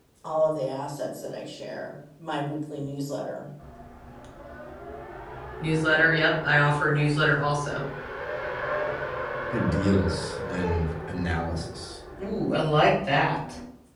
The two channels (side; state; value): both; identical; correlation 1.00